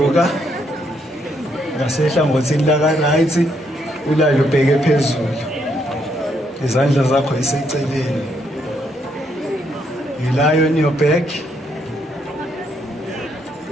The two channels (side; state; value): both; normal; correlation 0.74